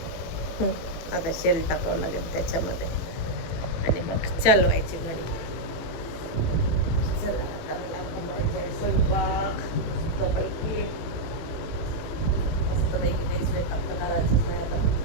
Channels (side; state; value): right; late; 18 ms